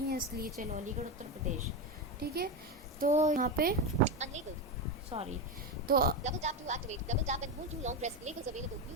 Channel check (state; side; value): normal; both; correlation 0.14